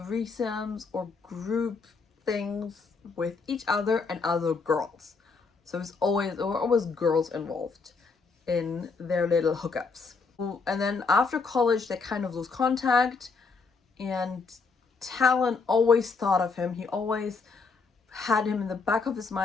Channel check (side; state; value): right; quieter; 4.5 dB